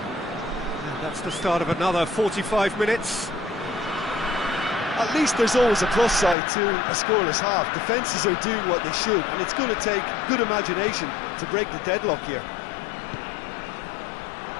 That's the start of another 45 minutes. At least there's always a plus side to a scoreless half. Defences are doing what they should, and it's going to take good imagination to break the deadlock here.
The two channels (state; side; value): drops out; right; at 6.4 s